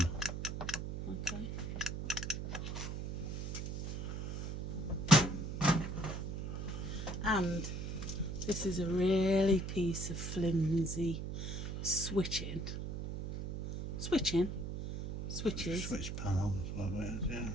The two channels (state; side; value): noise; right; hum, 4 dB below the sound